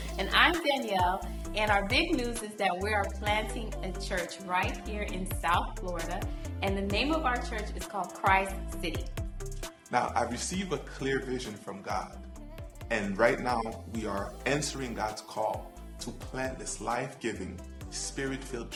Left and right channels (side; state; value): both; identical; correlation 1.00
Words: And I'm Danielle, and our big news is that we are planting a church right here in South Florida, and the name of our church is called Christ City. Now, I received a clear vision from God, and right now we are answering God's call to plant this life-giving, spirit-filled